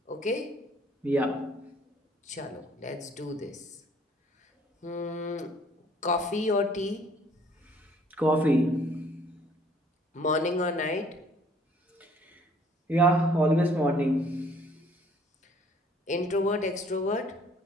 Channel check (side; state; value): both; normal; correlation 0.59